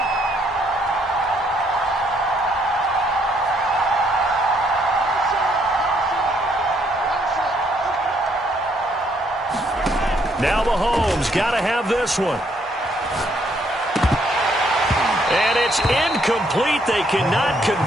Now Mahomes got to have this one. And it's incomplete. They cannot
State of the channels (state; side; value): normal; both; correlation 0.70